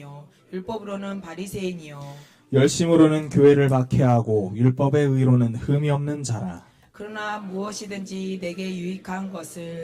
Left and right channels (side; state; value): both; identical; correlation 1.00